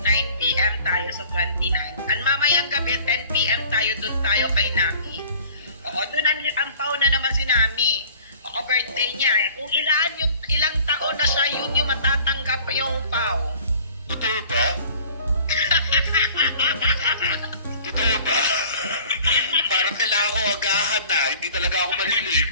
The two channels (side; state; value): both; inverted; correlation -0.49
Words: 9 p.m. tayo sa 29. Ang mamayang gabi, 10 p.m. tayo, dun tayo kay Nami. Oo, dun ang pau na naman si Nami. Oo, birthday niya eh. Kung ilang taon na siya, yun yung matatanggap yung pau. Totoo ba? Totoo ba? Parang kailangan ko agahan na. Hindi talaga ako